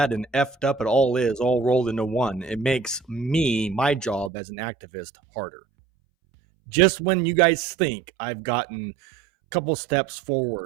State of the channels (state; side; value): drops out; left; at 4.3 s